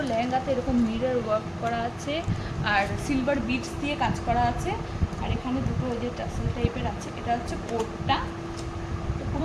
লেহেঙ্গাতে এরকম মিরর ওয়ার্ক করা আছে, আর সিলভার বিটস দিয়ে কাজ করা আছে, আর এখানে দুটো ওই যে টাসেল টাইপের আছে। এটা হচ্ছে কোটটা,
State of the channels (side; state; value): both; identical; correlation 1.00